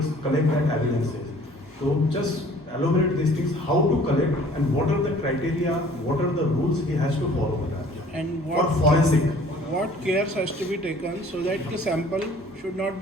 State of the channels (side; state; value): both; normal; correlation 0.53